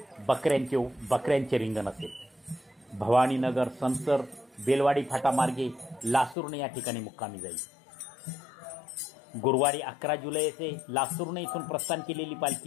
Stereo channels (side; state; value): right; drops out; at 6.4 s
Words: बकऱ्यांचे रिंगण असेल. भवानीनगर, संसर, बेलवाडी फाटामार्गे लासुर्णे या ठिकाणी मुक्कामी जाईल. गुरुवारी 11 जुलै येथे लासुर्णे इथून प्रस्थान केलेली